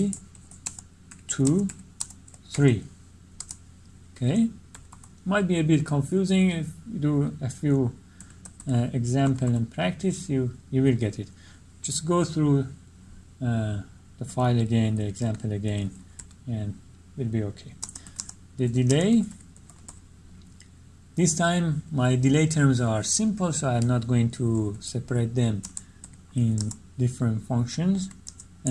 3. Okay, might be a bit confusing. If you do a few example and practice, you will get it. Just go through the file again, the example again, and will be okay. The delay, this time my delay terms are simple, so I'm not going to separate them in different functions.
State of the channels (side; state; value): both; identical; correlation 1.00